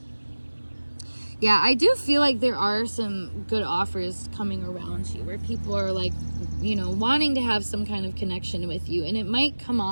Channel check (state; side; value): inverted; both; correlation -1.00